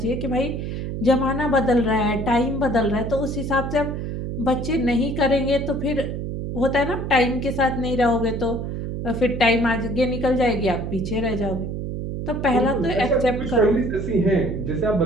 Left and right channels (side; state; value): right; noise; hum, 4 dB below the sound